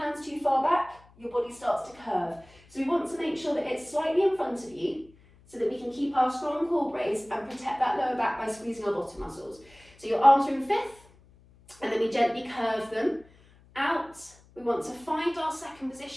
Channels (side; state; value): left; noise; hum, 27 dB below the sound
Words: too far back, your body starts to curve. So we want to make sure that it's slightly in front of you so that we can keep our strong core brace and protect that lower back by squeezing our bottom muscles. So your arms are in fifth, and then we gently curve them out. We want to find our second